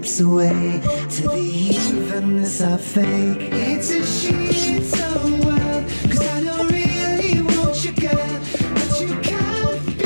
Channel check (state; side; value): inverted; both; correlation -1.00